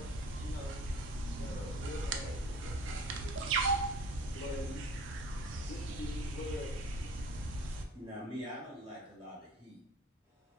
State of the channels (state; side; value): normal; both; correlation 0.44